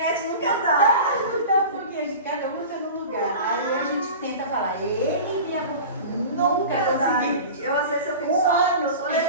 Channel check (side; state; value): both; inverted; correlation -0.35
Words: nunca dá. Porque a gente, cada um está num lugar. Aí a gente tenta falar, Ele me amou. Nunca consegui. Eu às vezes eu fico só